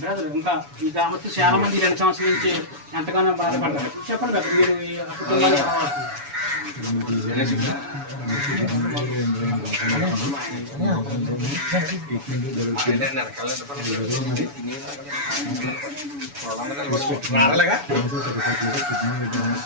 ఇంకా ఈ గ్రామస్తులు చాలా మంది 2 సంవత్సరాల నుంచి ఎంతగానో బాధపడ్డారు. చెప్పండి బ్రదర్, మీరు ఈ కుటుంబాన్ని ఎలా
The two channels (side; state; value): left; late; 7.0 ms